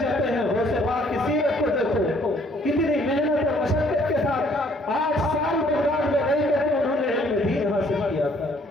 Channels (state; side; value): normal; both; correlation 0.62